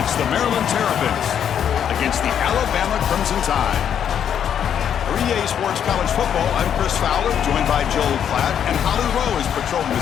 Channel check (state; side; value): quieter; right; 8.8 dB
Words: the Maryland Terrapins against the Alabama Crimson Tide. For EA Sports College Football, I'm Chris Fowler, joined by Joel Klatt, and Holly Rowe is patrolling